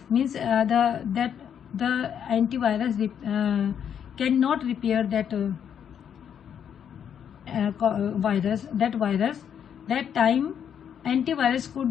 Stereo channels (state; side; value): quieter; right; 8.5 dB